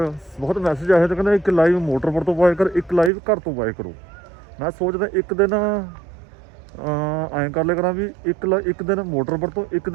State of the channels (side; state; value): left; drops out; at 3.1 s